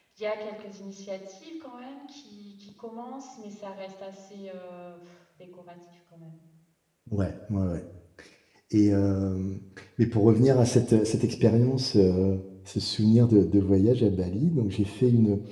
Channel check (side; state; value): both; identical; correlation 1.00